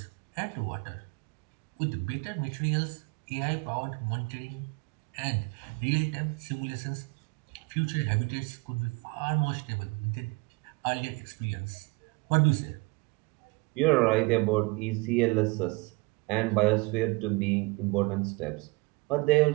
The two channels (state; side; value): quieter; left; 26.4 dB